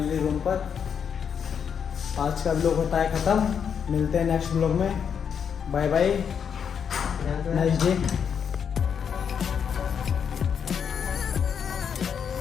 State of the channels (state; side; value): quieter; right; 7.3 dB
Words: रूम पर। आज का व्लॉग होता है ख़त्म। मिलते हैं नेक्स्ट व्लॉग में। Bye bye, nice day.